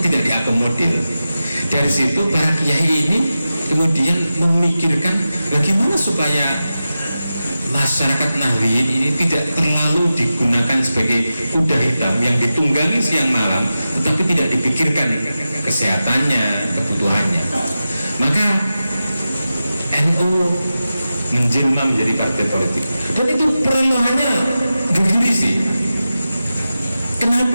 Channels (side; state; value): both; inverted; correlation -0.93